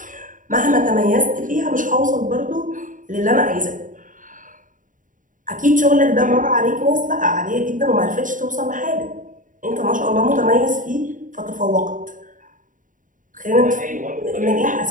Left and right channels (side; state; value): left; late; 0.38 ms